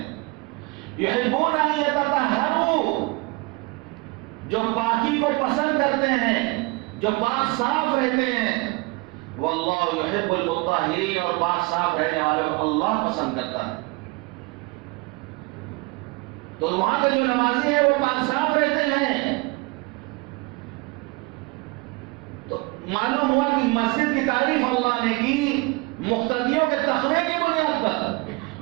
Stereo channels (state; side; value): quieter; left; 25.5 dB